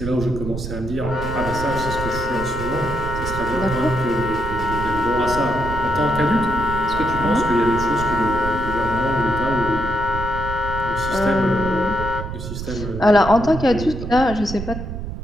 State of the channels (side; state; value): right; noise; rumble, 7 dB below the sound